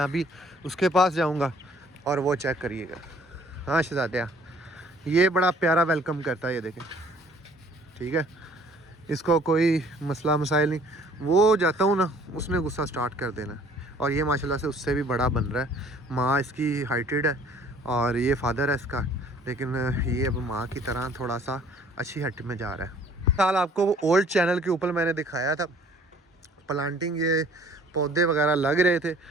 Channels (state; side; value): normal; both; correlation 0.56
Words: अभी उसके पास जाऊंगा और वो चेक करिएगा। हाँ शहजादा, ये बड़ा प्यारा वेलकम करता है, ये देखें, ठीक है, इसको कोई मसला मसाइल नहीं। वो जाता हूँ ना, उसने गुस्सा स्टार्ट कर देना। और ये माशाल्लाह से उससे भी बड़ा बन रहा है। माँ इसकी हाइटेड है और ये फादर है इसका, लेकिन ये अब माँ की तरह थोड़ा सा अच्छी हट में जा रहा है। साल आपको वो ओल्ड चैनल के ऊपर मैंने दिखाया था प्लांटिंग, ये पौधे वगैरह लग रहे थे,